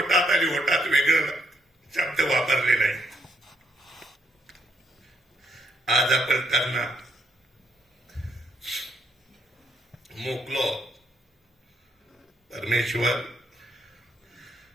आणि होटात वेगळं शब्द वापरले नाही. आज आपण त्यांना मोकलो. परमेश्वर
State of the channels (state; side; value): normal; both; correlation 0.73